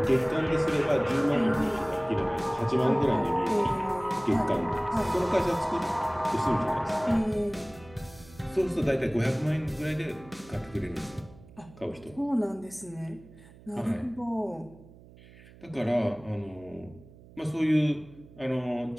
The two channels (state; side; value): noise; right; hum, 22 dB below the sound